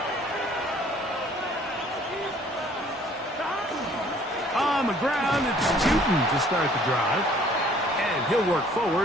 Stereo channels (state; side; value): normal; both; correlation 0.57